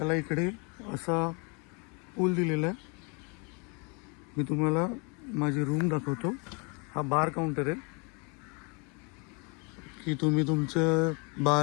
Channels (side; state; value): right; quieter; 33.1 dB